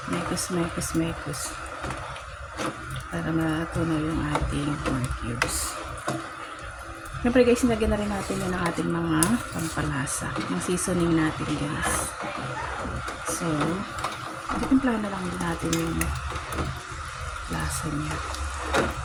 mekos para matunaw yung ating pork cubes. Syempre guys, nilagyan na rin natin yun ng ating mga pampalasa, ng seasoning natin guys. So, titimplahan na lang din natin yung lasa niya.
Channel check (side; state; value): both; identical; correlation 1.00